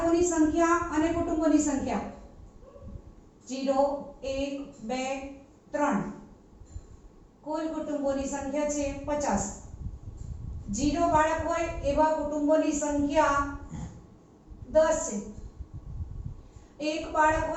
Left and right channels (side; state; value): both; identical; correlation 1.00